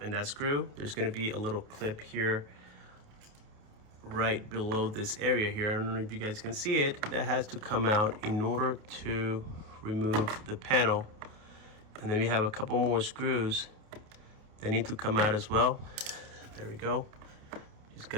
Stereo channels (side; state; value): left; late; 29 ms